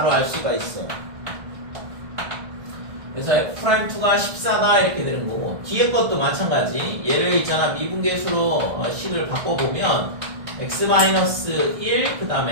알 수가 있어. 그래서 f'2가 14다 이렇게 되는 거고, 뒤에 것도 마찬가지. 얘를 있잖아, 미분계수로 식을 바꿔보면 x-1, 그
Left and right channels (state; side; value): late; left; 1.6 ms